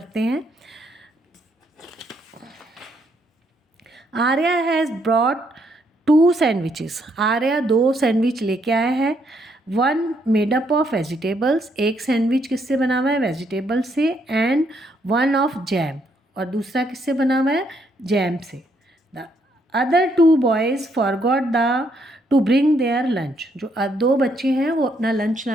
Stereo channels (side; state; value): both; normal; correlation 0.73